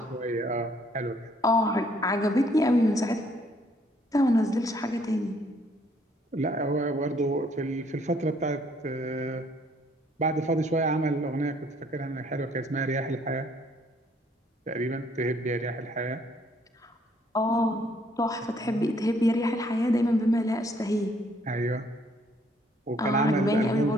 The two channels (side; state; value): both; normal; correlation 0.64